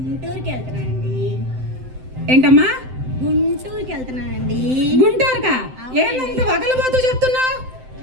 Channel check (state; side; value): late; left; 7.8 ms